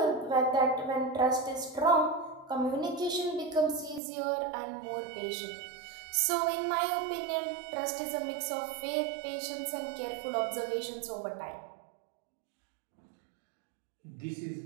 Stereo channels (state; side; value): drops out; left; at 4.0 s